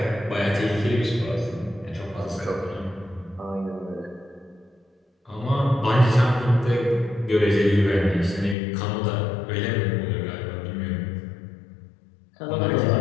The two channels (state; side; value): drops out; right; at 8.6 s